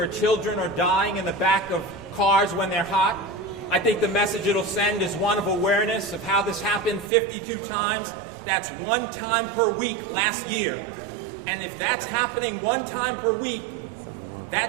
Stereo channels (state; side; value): drops out; left; at 7.1 s